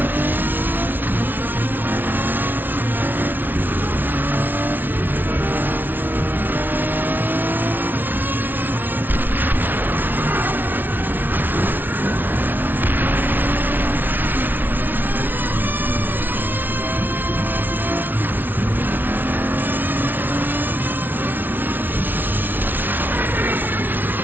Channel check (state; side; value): late; left; 0.089 ms